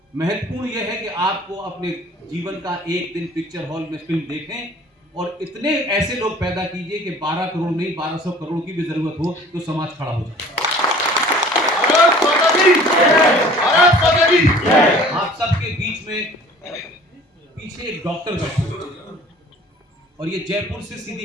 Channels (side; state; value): both; normal; correlation 0.49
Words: महत्वपूर्ण यह है कि आपको अपने जीवन का एक दिन पिक्चर हॉल में फिल्म देखें और इतने ऐसे लोग पैदा कीजिए कि 12 करोड़ नहीं 1200 करोड़ की भी जरूरत हो तो समाज खड़ा हो जाए। आप सबके बीच में पीछे एक डॉक्टर बैठे हैं और ये जयपुर से